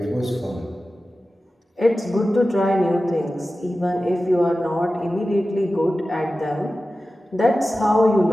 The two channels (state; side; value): normal; both; correlation 0.95